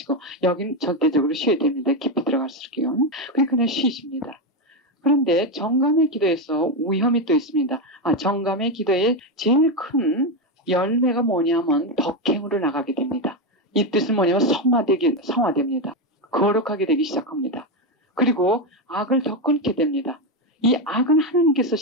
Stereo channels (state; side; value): normal; both; correlation 0.09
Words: 여긴 절대적으로 쉬어야 됩니다. 깊이 들어갈수록요. 그냥 쉬십니다. 그런데 정감의 기도에서 위험이 또 있습니다. 정감의 기도의 제일 큰 열매가 뭐냐면 덕행으로 나가게 됩니다. 이 뜻은 뭐냐면 성화됩니다. 거룩하게 되기 시작합니다. 그리고 악을 더 끊게 됩니다. 이 악은 하나님께서